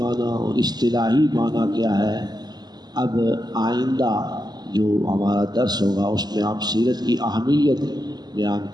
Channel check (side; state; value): left; late; 0.20 ms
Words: اور اصطلاحی معنی کیا ہے. اب آئندہ جو ہمارا درس ہوگا اس میں ہم سیرت کی اہمیت بیان